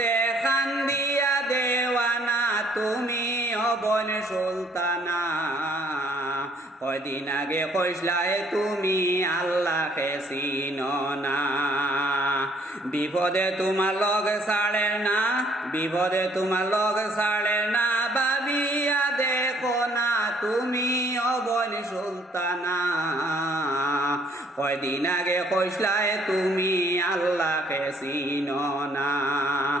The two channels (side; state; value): both; normal; correlation 0.63